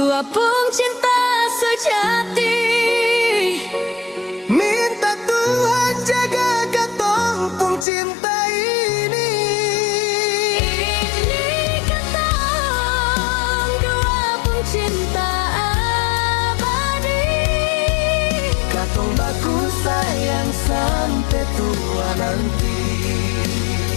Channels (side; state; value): right; drops out; at 7.9 s